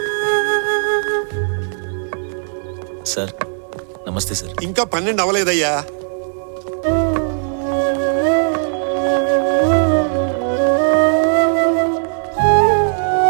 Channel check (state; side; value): silent; left; 68 dB below the other